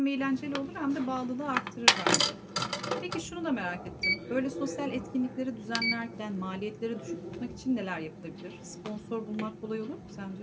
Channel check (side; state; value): both; identical; correlation 1.00